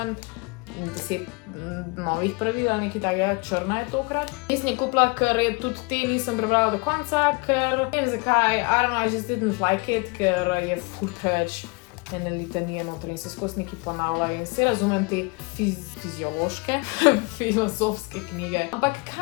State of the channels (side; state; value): right; quieter; 29.4 dB